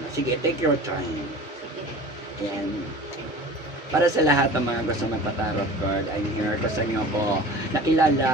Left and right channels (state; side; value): normal; both; correlation 0.40